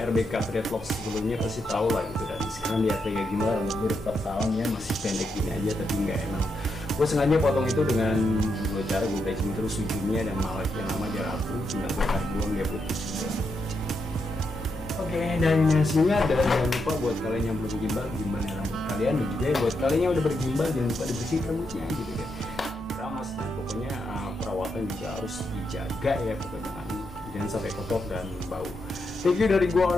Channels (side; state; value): both; normal; correlation 0.82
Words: Dreadlocks sebelumnya pasti tahu lah gitu, dan sekarang lihat kayak gimana rambut gue 4 tahun ya masih pendek gini aja, tapi nggak emang. Gue sengaja potong itu dengan dua cara, gue bleaching terus ujungnya, dan malah yang lama dia rapuh, tinggal gue tarik buang dia putus gitu. Oke, dan hasilnya ada. Jangan lupa buat kalian yang belum gimbal, gimana rambut kalian, dan juga buat kalian yang udah bergimbal jangan lupa dibersihin rambutnya gitu kan. Keramas, dan pokoknya perawatan juga harus dijaga ya, pokoknya jangan sampai kotor dan bau. Thank you dari gua